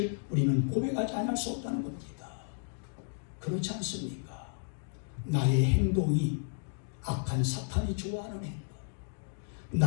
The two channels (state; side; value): silent; right; digital silence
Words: 우리는 고백하지 않을 수 없다는 겁니다. 그렇지 않습니까? 나의 행동이 악한 사탄이 좋아하는 행동,